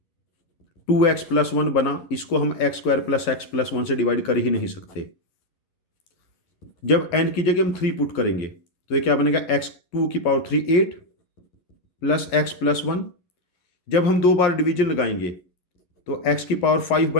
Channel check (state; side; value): late; right; 11 ms